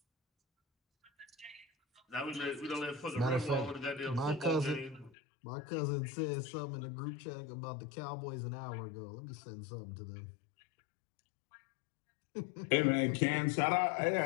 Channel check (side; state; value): right; drops out; at 5.1 s